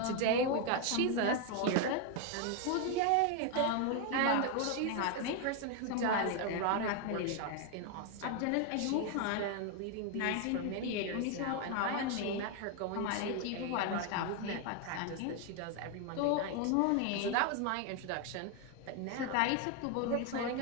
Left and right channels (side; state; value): both; different; correlation 0.01